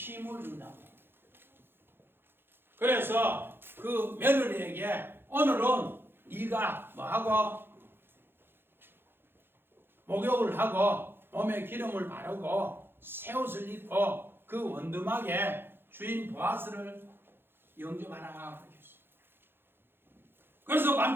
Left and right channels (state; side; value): late; left; 0.10 ms